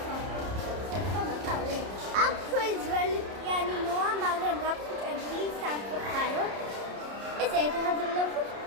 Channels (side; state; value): left; late; 30 ms